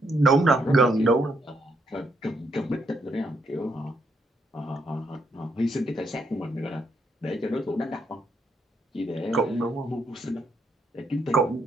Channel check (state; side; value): normal; both; correlation 0.75